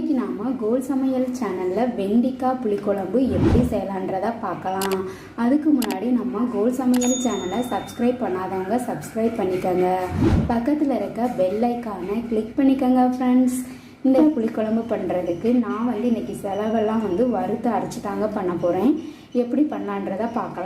நாம் கோல் சமையல் சேனலில் வெண்டிக்காய் புளிக்குழம்பு எப்படி செய்யலான்றதை பார்க்கலாம். அதுக்கு முன்னாடி நம்ம கோல் சமையல் சேனலை சப்ஸ்கிரைப் பண்ணாதவங்க சப்ஸ்கிரைப் பண்ணிக்கோங்க. பக்கத்தில் இருக்க பெல் ஐக்கானை கிளிக் பண்ணிக்கோங்க ஃப்ரெண்ட்ஸ். இந்த புளிக்குழம்பு பண்ணுறதுக்கு நான் இன்றைக்கி செலவெல்லாம் வறுத்து அரைச்சி தாங்க பண்ண போகிறேன். எப்படி பண்ணலான்றதை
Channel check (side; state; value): both; identical; correlation 1.00